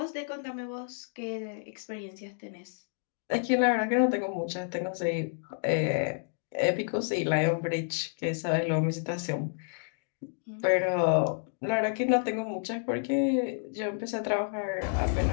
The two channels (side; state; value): right; silent; digital silence